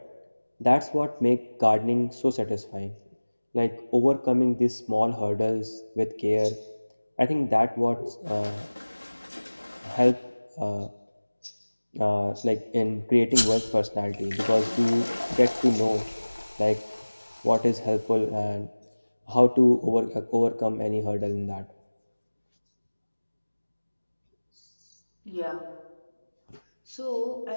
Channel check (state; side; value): inverted; both; correlation -1.00